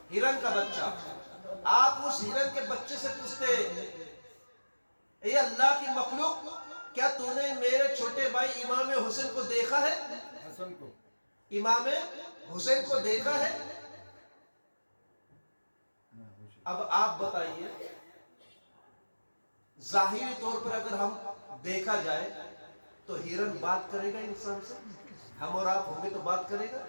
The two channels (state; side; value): inverted; both; correlation -1.00